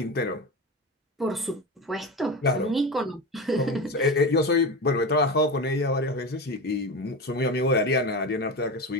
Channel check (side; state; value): both; normal; correlation 0.23